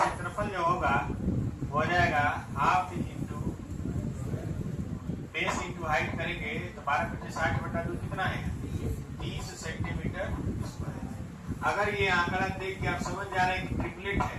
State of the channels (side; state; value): both; identical; correlation 1.00